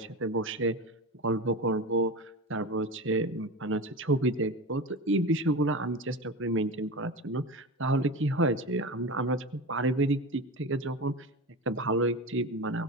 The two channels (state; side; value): normal; both; correlation 0.25